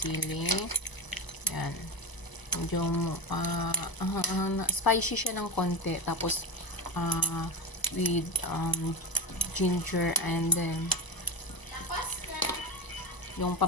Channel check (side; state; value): right; late; 1.0 ms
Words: Yan. Medyo spicy siya ng konti. Tapos with ginger and then yung